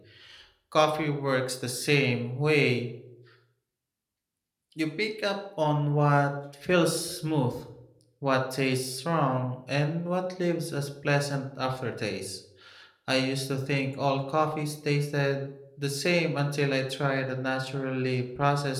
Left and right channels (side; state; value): both; identical; correlation 1.00